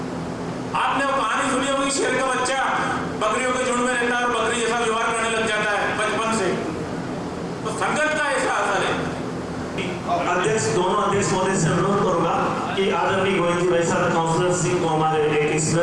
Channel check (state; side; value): identical; both; correlation 1.00